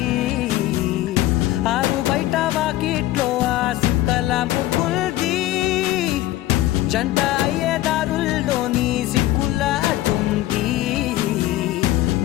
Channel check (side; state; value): right; quieter; 15.6 dB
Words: ఆరు బయట వాకిట్లో ఆ సుక్కల ముగ్గుల్ది జంట అయ్యే దారుల్లోని సిగ్గుల అడ్డుంది